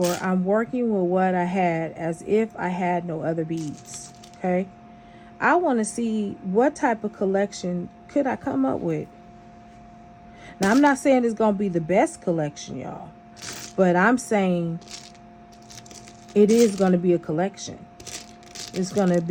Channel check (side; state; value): both; identical; correlation 1.00